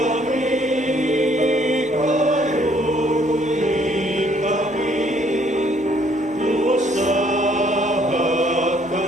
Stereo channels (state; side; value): normal; both; correlation 0.64